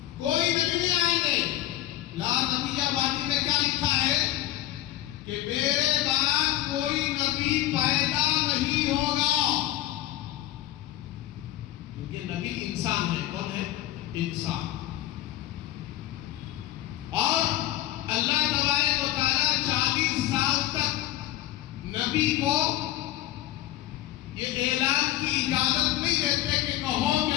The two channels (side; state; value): right; quieter; 14.1 dB